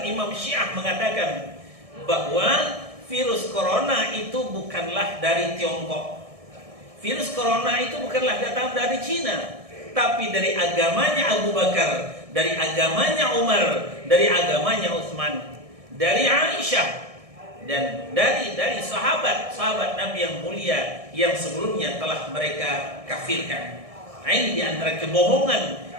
Imam Syiah mengatakan bahwa virus corona itu bukanlah dari Tiongkok. Virus corona itu bukanlah datang dari Cina, tapi dari agamanya Abu Bakar, dari agamanya Umar, dari agamanya Utsman, dari Aisyah, dan dari sahabat Nabi yang mulia yang sebelumnya telah mereka kafirkan. Nah, ini di antara kebohongan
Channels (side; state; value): left; late; 1.6 ms